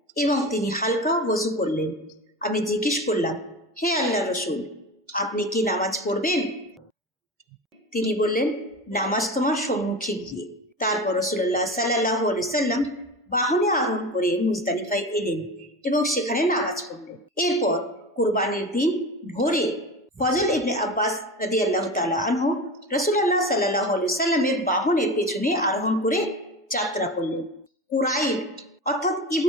এবং তিনি হালকা ওযু করলেন। আমি জিজ্ঞেস করলাম, হে আল্লাহর রাসূল, আপনি কি নামাজ পড়বেন? তিনি বললেন, নামাজ তোমার সম্মুখে গিয়ে। তারপর রাসূলুল্লাহ সাল্লাল্লাহু আলাইহি ওয়াসাল্লাম বাহনে আরোহণ করে মুজদালিফায় এলেন এবং সেখানে নামাজ পড়লেন। এরপর কুরবানির দিন ভোরে ফজল ইবনে আব্বাস রাদিয়াল্লাহু তাআলা আনহু রাসূলুল্লাহ সাল্লাল্লাহু আলাইহি ওয়াসাল্লামের বাহনের পেছনে আরোহণ করে যাত্রা করলেন। কুরাইব অর্থাৎ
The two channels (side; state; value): both; normal; correlation 0.28